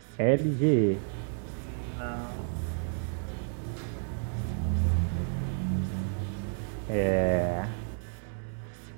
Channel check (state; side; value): silent; left; 57 dB below the other